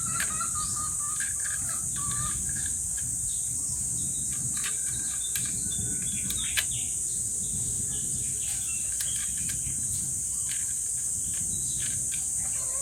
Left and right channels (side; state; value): right; noise; hum, 17 dB below the sound